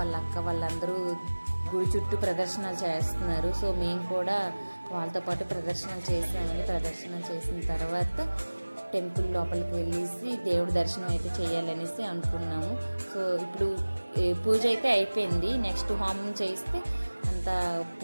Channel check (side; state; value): both; inverted; correlation -1.00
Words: అక్క వాళ్ళందరూ గుడి చుట్టూ ప్రదర్శనలు చేస్తున్నారు. సో మేము కూడా వాళ్ళతో పాటు ప్రదర్శనలు చేసామని. ప్రదర్శనలు చేసిన తర్వాత టెంపుల్ లోపలికి వెళ్ళేసి దేవుడి దర్శనం అయితే చేయాలనేసి అనుకున్నాము. సో ఇప్పుడు పూజ అయితే అయిపోయింది. నెక్స్ట్ హోమం చేస్తే అంతా